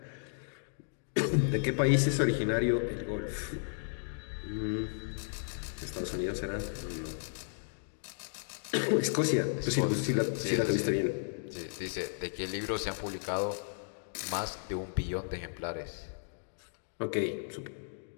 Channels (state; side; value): silent; right; digital silence